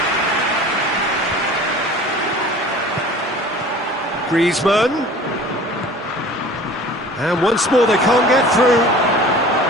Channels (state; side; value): normal; both; correlation 0.44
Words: Griezmann. And once more they can't get through.